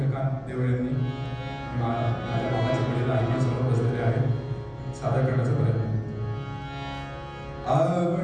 देवळे यांनी. माझ्या मामाचे वडील आई समोर बसलेले आहे. सादर करण्याचा प्रयत्न.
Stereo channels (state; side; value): identical; both; correlation 1.00